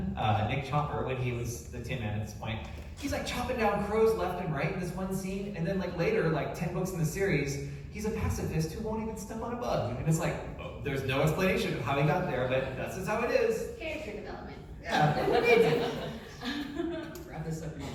Nick Chopper, when he was the Tin Man at this point, he's like chopping down crows left and right in this one scene, and then like later, like 10 books in the series, he's a pacifist who won't even step on a bug, and it's like, oh, there's no explanation of how he got there, but that's just how it is. Character development. Yeah. Wrap this up in your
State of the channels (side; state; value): both; identical; correlation 1.00